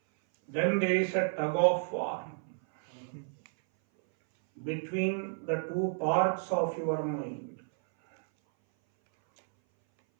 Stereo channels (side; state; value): left; silent; 57 dB below the other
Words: Then there is a tug of war between the two parts of your mind.